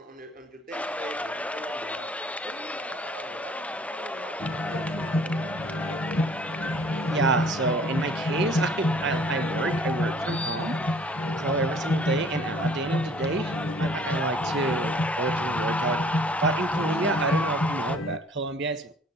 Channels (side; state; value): both; normal; correlation 0.55